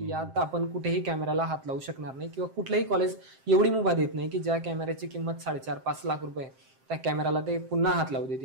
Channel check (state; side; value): late; left; 7.6 ms